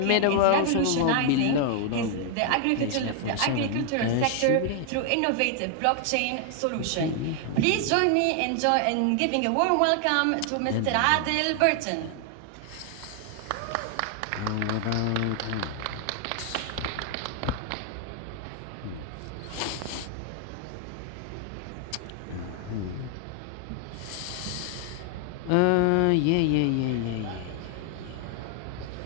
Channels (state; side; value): different; both; correlation 0.00